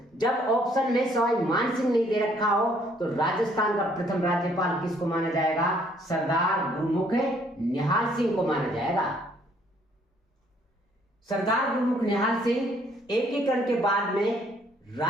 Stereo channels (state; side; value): normal; both; correlation 0.64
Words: जब ऑप्शन में सवाई मान सिंह नहीं दे रखा हो तो राजस्थान का प्रथम राज्यपाल किसको माना जाएगा? सरदार गुरुमुख निहाल सिंह को माना जाएगा। सरदार गुरुमुख निहाल सिंह एकीकरण के बाद में